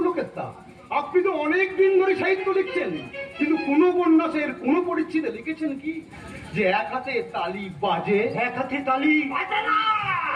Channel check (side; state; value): both; identical; correlation 1.00